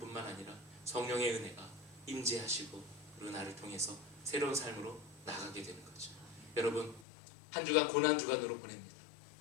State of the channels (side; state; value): right; drops out; at 7.1 s